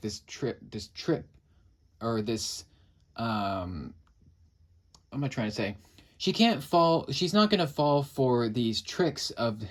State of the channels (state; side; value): identical; both; correlation 1.00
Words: this trip, or this, what am I trying to say? She's not going to fall for these tricks of